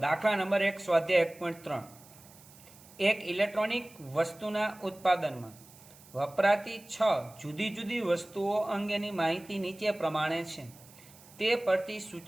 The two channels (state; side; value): noise; right; hiss, 23 dB below the sound